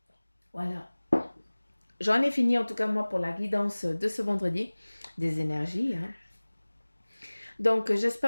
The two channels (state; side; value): inverted; both; correlation -1.00